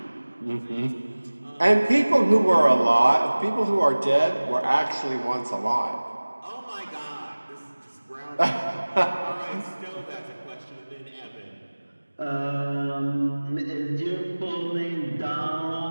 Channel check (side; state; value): both; inverted; correlation -1.00